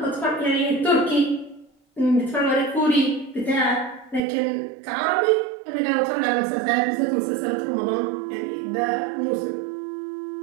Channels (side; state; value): left; drops out; at 4.2 s